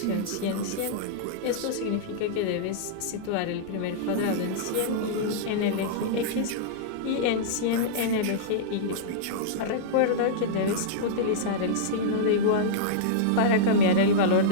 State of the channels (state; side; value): different; both; correlation -0.02